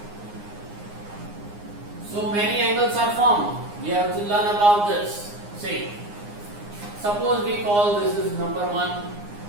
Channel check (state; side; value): late; left; 9.7 ms